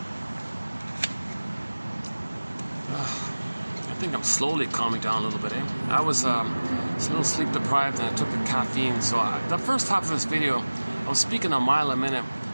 I think I'm slowly calming down a little bit, eh? I was a little sleep deprived and I took the caffeine, so the first half of this video I was speaking a mile a minute,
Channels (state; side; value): inverted; both; correlation -1.00